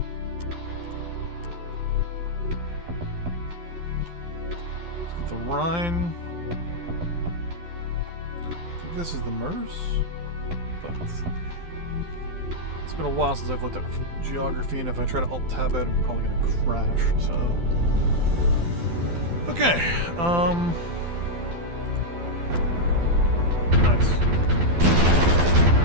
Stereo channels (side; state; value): left; late; 12 ms